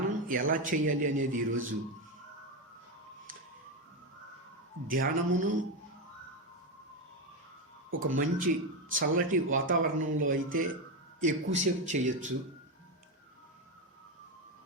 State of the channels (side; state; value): both; normal; correlation 0.11